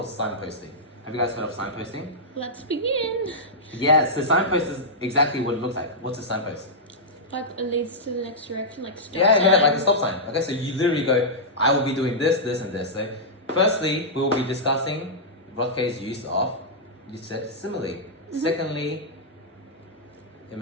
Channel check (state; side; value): normal; both; correlation -0.10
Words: signposting. Have you guys heard of signposting? Let's begin. Yeah, so signpost is exactly what it looks like. What's a signpost? Like it leads to the next direction, like stop Yeah, sign. like a stop sign. Okay, so you literally go, I will be doing this, this, and this. So, firstly, we will be discussing Rothke's use of, you said, simile. Secondly,